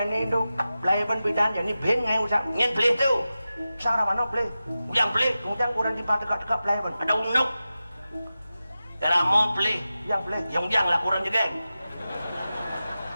itu belai pun pidan jadi ben ngai usah ngen beli tu sarang mana beli yang beli kemudian kurang di dekat belai pun ada unuk dalam mau beli yang beli yang lah kurang juga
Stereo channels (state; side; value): inverted; both; correlation -0.93